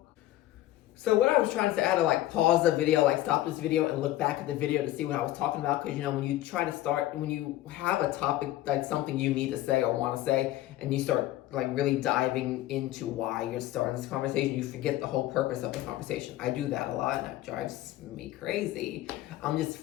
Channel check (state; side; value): quieter; right; 15.1 dB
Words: So what I was trying to say, I had to like pause the video, like stop this video and look back at the video to see what I was talking about. Because when you try to start, when you have a topic, like something you need to say or want to say, and you start like really diving into why you're starting this conversation, you forget the whole purpose of the conversation. I do that a lot and that drives me crazy. I'm just